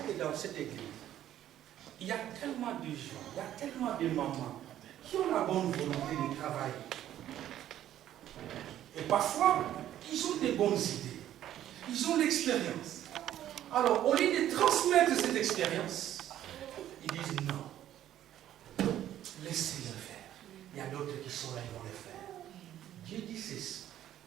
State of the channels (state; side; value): quieter; left; 12.0 dB